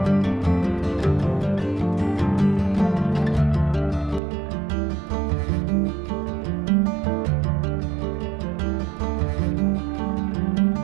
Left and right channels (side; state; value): left; drops out; at 4.2 s